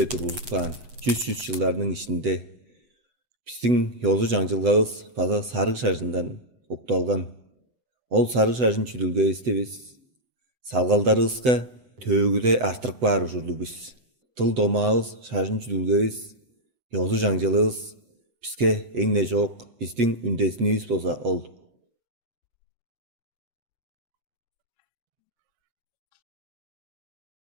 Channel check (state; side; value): late; left; 7.9 ms